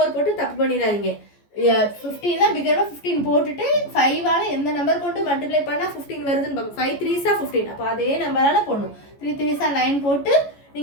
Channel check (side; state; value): right; late; 14 ms